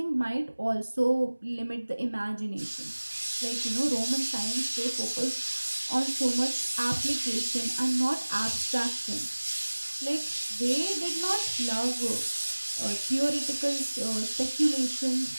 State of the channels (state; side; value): inverted; both; correlation -1.00